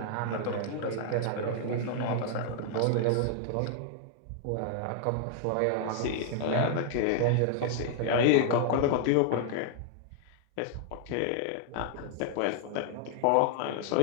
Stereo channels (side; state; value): both; different; correlation -0.01